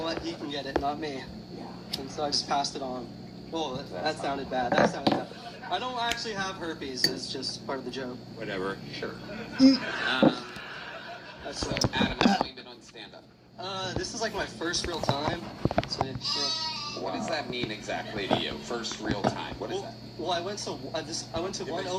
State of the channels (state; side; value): identical; both; correlation 1.00